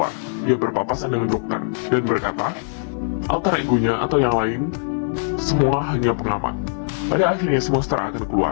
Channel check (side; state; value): right; silent; 56 dB below the other